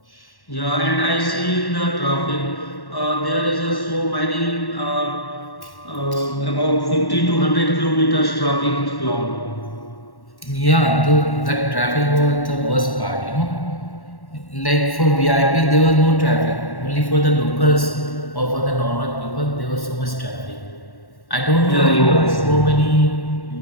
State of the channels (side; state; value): right; late; 1.1 ms